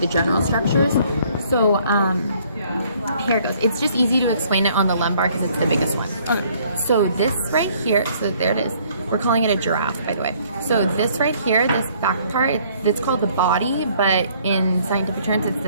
general structures. So here it goes. It's just easy to explain it on the lumbar because it's the biggest one. Okay. So this right here, so there it is. We're calling it a giraffe, by the way. So this right here, this back part, it's called the body, but in scientific terms, it's the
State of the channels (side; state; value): both; inverted; correlation -0.61